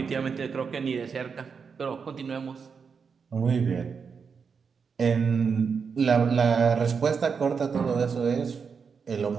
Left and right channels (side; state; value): left; quieter; 5.9 dB